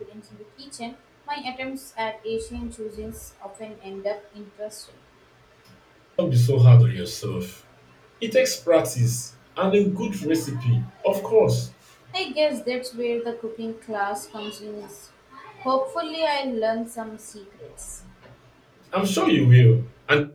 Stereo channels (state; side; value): identical; both; correlation 1.00